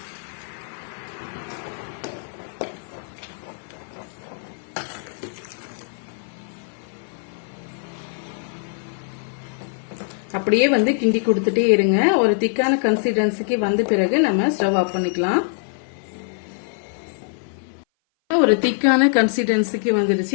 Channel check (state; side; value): silent; right; 57 dB below the other